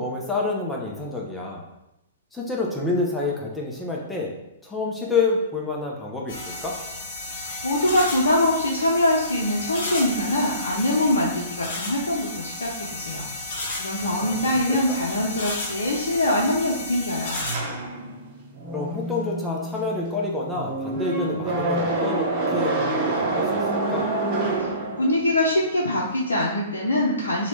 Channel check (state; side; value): inverted; both; correlation -0.43